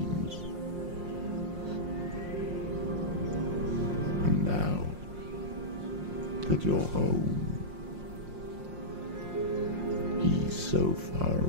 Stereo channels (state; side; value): late; left; 5.6 ms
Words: And now that you're home, he's so far